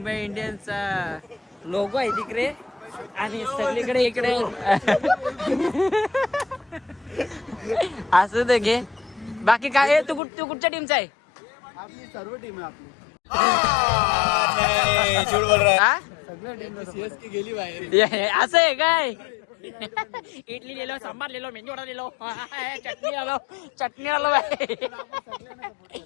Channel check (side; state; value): right; drops out; at 10.2 s